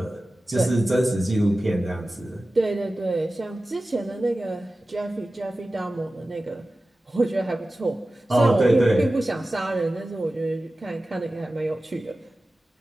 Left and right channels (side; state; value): both; normal; correlation 0.96